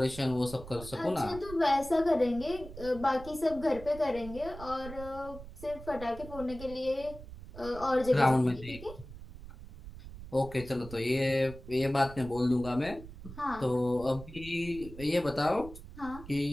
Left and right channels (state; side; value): noise; right; rumble, 14 dB below the sound